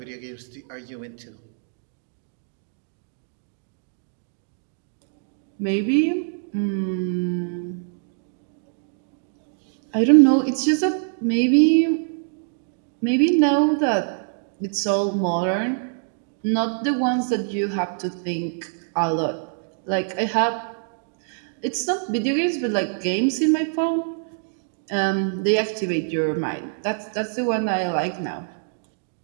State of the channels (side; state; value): left; silent; digital silence